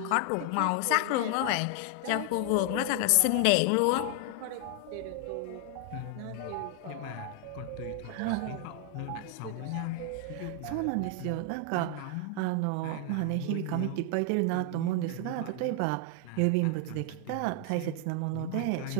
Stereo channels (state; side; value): different; both; correlation 0.00